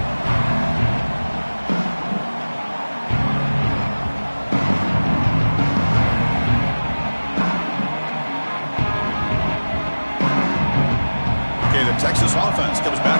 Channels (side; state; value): both; inverted; correlation -1.00